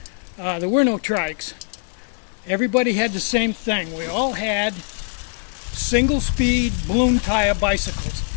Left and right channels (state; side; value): silent; right; 62 dB below the other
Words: there were no trikes. Everybody had the same thing. We all had single-speed balloon tire bicycles.